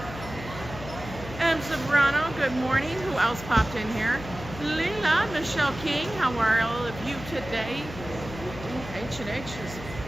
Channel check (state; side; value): noise; left; hum, 12 dB below the sound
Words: Zambrano, good morning. Who else popped in here? Lila, Michelle King, how are all of you today? H&H is